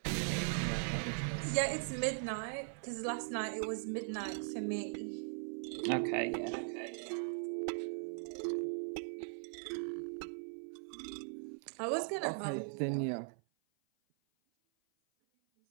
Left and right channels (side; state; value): left; silent; 51 dB below the other